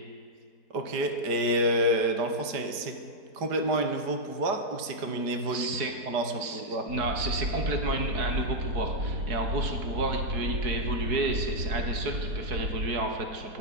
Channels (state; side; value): late; left; 4.6 ms